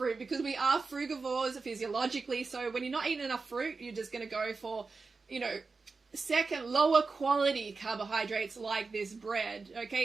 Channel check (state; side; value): quieter; left; 4.3 dB